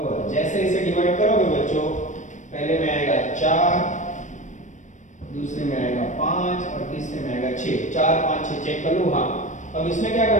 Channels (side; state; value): right; late; 0.35 ms